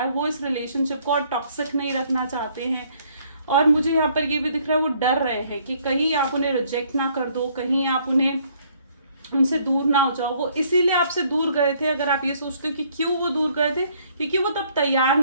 वो इस रिलेशनशिप को और टॉक्सिक नहीं रखना चाहते हैं। और मुझे यहाँ पर ये भी दिख रहा है वो डर रहे हैं कि कहीं आप उन्हें रिजेक्ट ना कर दो, कहीं आप उन्हें उनसे दूर ना हो जाओ। वो इसीलिए आपसे दूर गए थे। अगर आप ये सोचते हो कि क्यों वो दूर गए थे, क्योंकि वो तब तैयार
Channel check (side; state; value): both; inverted; correlation -0.64